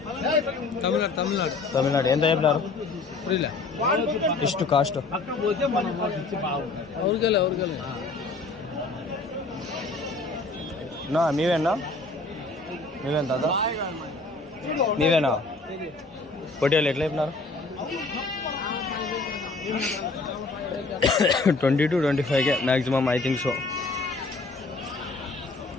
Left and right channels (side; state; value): right; quieter; 3.6 dB